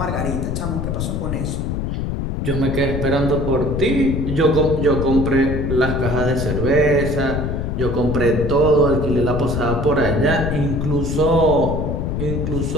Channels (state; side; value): noise; left; rumble, 2 dB below the sound